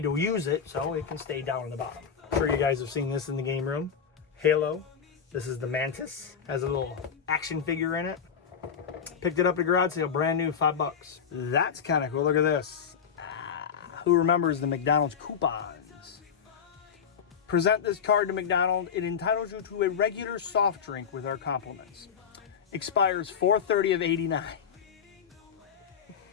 to use it, so it can stay down in the bottom. I'm sure you guys have seen this in the game room. Halo. This is the Mantis. Has a little action figure in it. Picked it up at a garage sale, brand new, $5. That's kind of cool. Look at this. Who remembers the McDonald's coupons? Present this card to McDonald's. It entitles you to a regular soft drink with our compliments. Expires 4/30 of 89.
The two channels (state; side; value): quieter; right; 7.2 dB